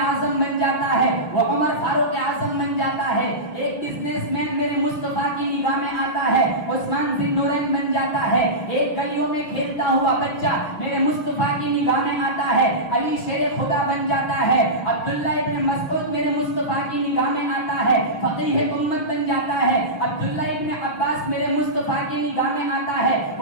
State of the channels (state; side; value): late; right; 6.8 ms